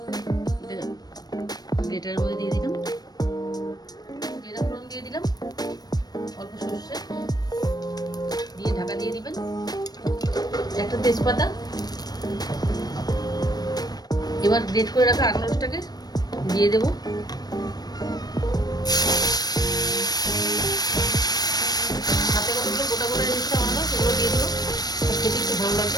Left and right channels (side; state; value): right; late; 0.19 ms